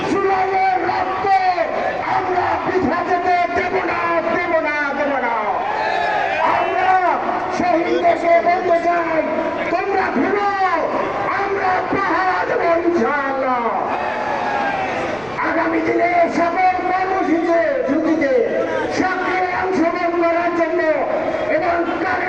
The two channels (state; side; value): noise; right; rumble, 22 dB below the sound